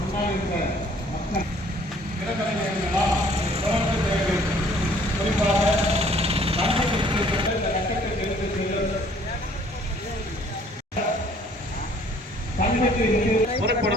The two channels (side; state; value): both; normal; correlation 0.58